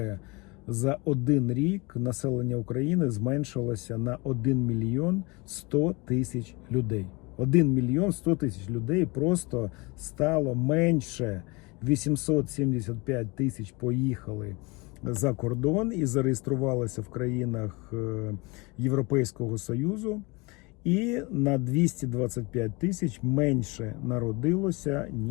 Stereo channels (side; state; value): right; quieter; 26.5 dB